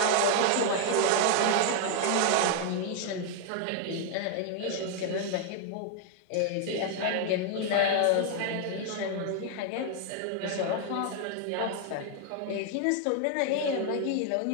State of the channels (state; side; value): different; both; correlation 0.00